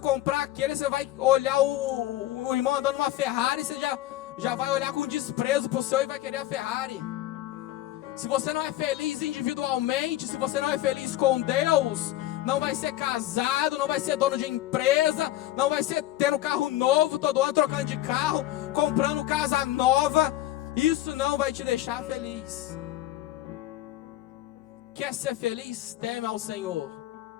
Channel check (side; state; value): right; quieter; 14.5 dB